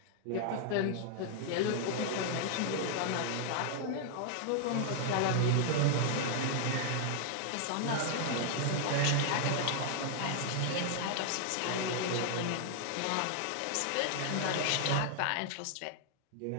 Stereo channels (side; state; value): both; different; correlation 0.00